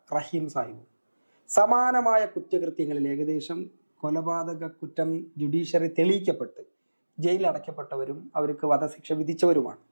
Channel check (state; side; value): inverted; both; correlation -1.00